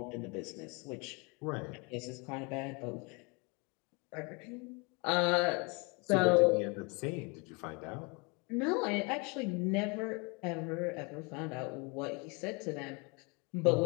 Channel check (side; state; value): right; quieter; 30.5 dB